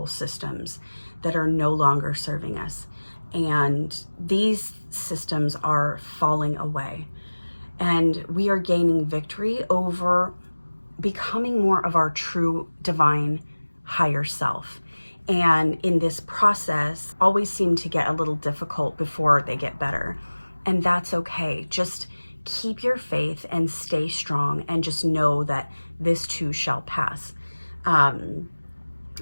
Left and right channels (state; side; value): inverted; both; correlation -1.00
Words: systems that are no longer serving us. And these systems are falling away. And we are gaining victory over becoming more of our true divine higher self. And in this process, always seem to get a little difficult before they get better. And that's okay. Just keep your faith and stay strong, and just know that this too shall pass.